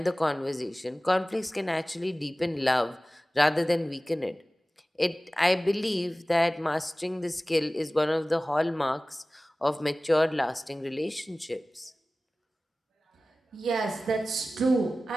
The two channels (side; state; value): both; normal; correlation 0.97